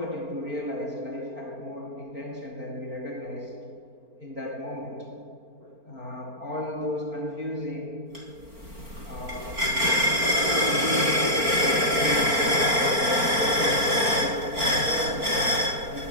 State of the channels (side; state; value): left; late; 4.4 ms